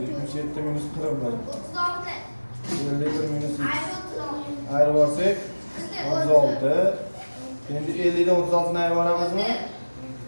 minus 41. 51 minus 2. Ayirib olsak 36. Endi 50 dan 36 ni ayirib olamizmi?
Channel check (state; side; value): inverted; both; correlation -1.00